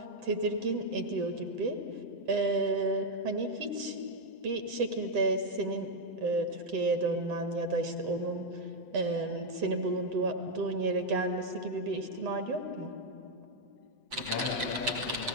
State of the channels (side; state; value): left; late; 8.0 ms